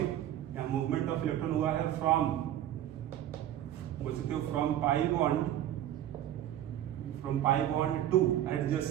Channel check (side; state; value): left; quieter; 11.9 dB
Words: मूवमेंट ऑफ इलेक्ट्रॉन हुआ है फ्रॉम, बोल सकते हो from pi bond two